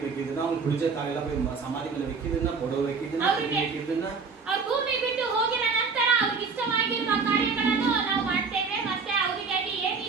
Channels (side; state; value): left; quieter; 4.9 dB